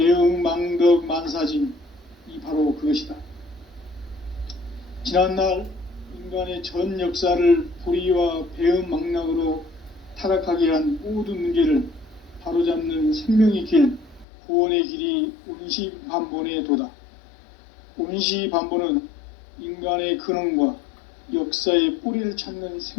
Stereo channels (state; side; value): drops out; right; at 14.2 s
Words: 망덕 만사진, 이 바로 그것이다. 지난날 인간의 전 역사를 불의와 배음 망락으로 타락하게 한 모든 문제를 바로잡는 생명의 길, 구원의 길이 온시반본의 도다. 온시반본은 인간의 근원과 역사의 뿌리를 찾는